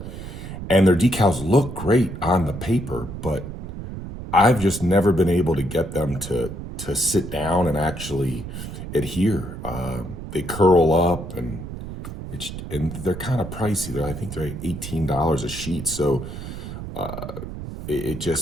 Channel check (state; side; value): noise; right; rumble, 9 dB below the sound